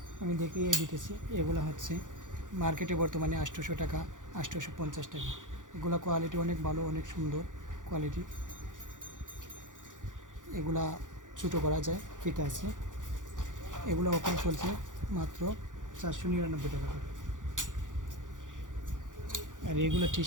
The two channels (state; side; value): late; left; 0.87 ms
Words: আমি দেখিয়ে দিতেছি। এগুলো হচ্ছে মার্কেটে বর্তমানে 800 টাকা, 850 টাকা। এগুলো কোয়ালিটি অনেক ভালো, অনেক সুন্দর কোয়ালিটি। এগুলা ছোটো করা যায়, ফিতে আছে। এগুলো অফার চলছে মাত্র 499 টাকা করে। আর এগুলো টি